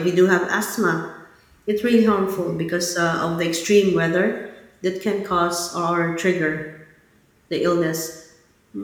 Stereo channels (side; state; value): both; identical; correlation 1.00